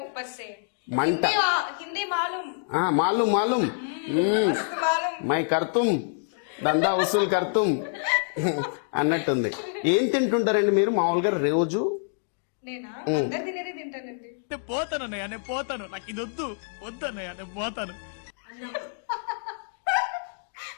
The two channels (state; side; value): silent; right; digital silence